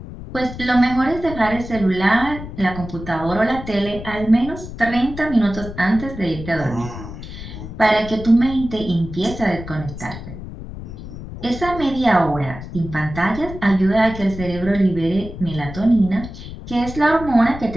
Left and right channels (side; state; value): left; noise; rumble, 11 dB below the sound